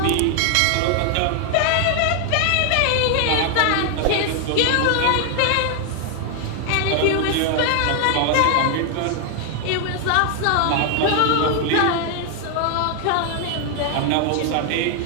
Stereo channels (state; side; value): different; both; correlation 0.00